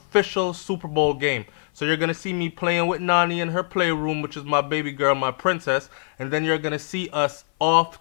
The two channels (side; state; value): right; silent; 56 dB below the other